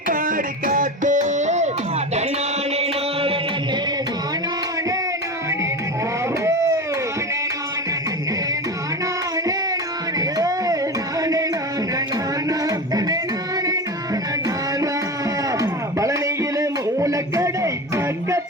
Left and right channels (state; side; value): normal; both; correlation 0.26